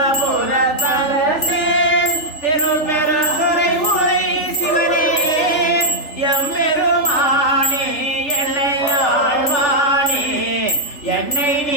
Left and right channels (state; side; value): late; right; 3.4 ms